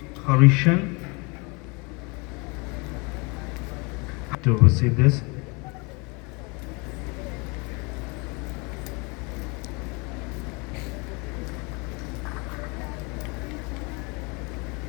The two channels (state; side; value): quieter; right; 29.5 dB